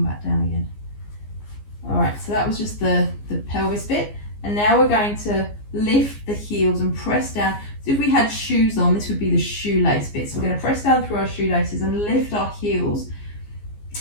back down again. All right, so that was just the pelvis bit. And now we're going to lift the heels and press down. So if we had shoes on, this would be the shoelace bit. So we're going to press down through our shoelaces and lift our heels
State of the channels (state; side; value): late; right; 14 ms